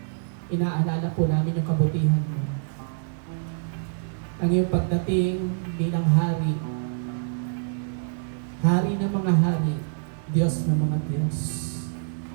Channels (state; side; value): silent; left; digital silence